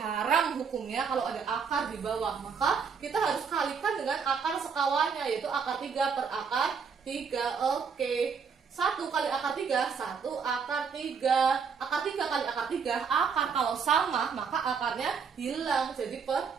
hukumnya kalau ada akar di bawah. Maka kita harus kalikan dengan akar sekawannya, yaitu akar 3 per akar 3. Oke, 1 kali akar 3, 1 akar 3. Akar 3 kali akar 3, akar kalau sama maka akarnya hilang, jadi per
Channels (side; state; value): left; quieter; 6.0 dB